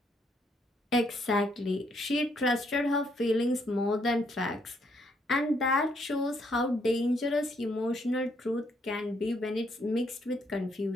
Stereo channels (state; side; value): normal; both; correlation 0.72